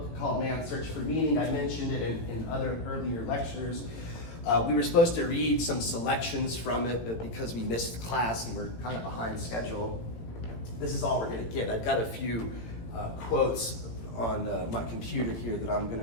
called Man's Search for Meaning. I mentioned it in other earlier lectures. We were supposed to read some selections from it, but because we missed class and we're kind of behind schedule, this is all we're going to get. I've got a few quotes on my computer here that I'm going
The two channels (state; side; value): late; right; 18 ms